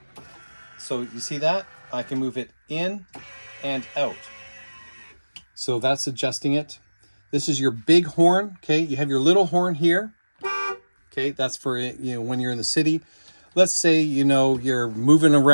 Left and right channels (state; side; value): inverted; both; correlation -1.00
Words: So you see that? I can move it in and out. So that's adjusting it. This is your big horn. Okay. You have your little horn here. Okay. That's for, when you're in the city. Let's say, you're moving